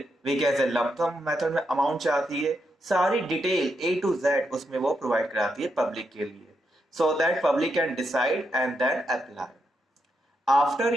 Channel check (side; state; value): both; normal; correlation 0.82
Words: वी कैसे लंप सम मेथड में अमाउंट चाहती है, सारी डिटेल A to Z उसमें वो प्रोवाइड कराती है पब्लिक के लिए, so that public can decide and then apply. After